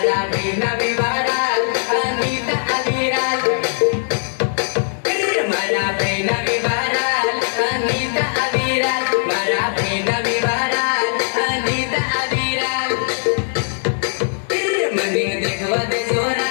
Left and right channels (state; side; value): silent; right; 62 dB below the other